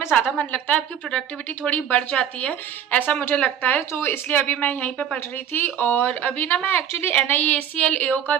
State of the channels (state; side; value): quieter; left; 9.2 dB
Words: ज़्यादा मन लगता है, आपकी प्रोडक्टिविटी थोड़ी बढ़ जाती है, ऐसा मुझे लगता है। तो इसलिए अभी मैं यहीं पे पढ़ रही थी और अभी ना मैं एक्चुअली NICL AO का